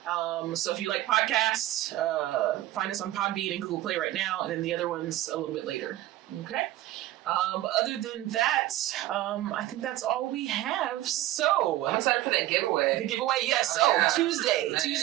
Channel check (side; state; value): left; quieter; 15.3 dB